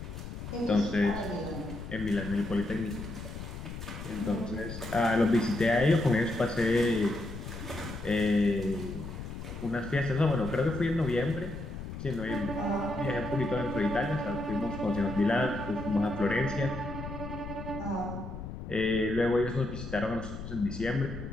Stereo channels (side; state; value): left; noise; rumble, 9 dB below the sound